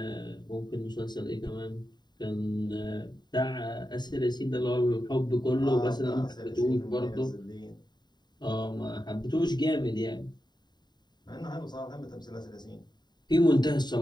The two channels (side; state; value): right; late; 0.21 ms